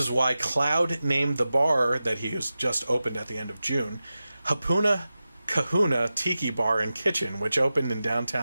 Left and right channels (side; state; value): both; inverted; correlation -0.94